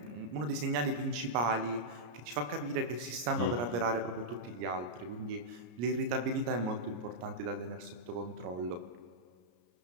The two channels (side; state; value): left; late; 34 ms